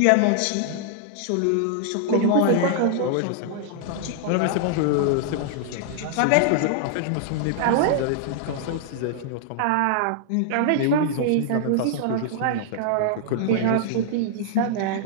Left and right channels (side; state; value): both; different; correlation -0.01